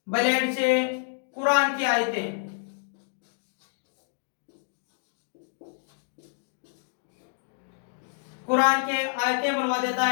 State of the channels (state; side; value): silent; right; digital silence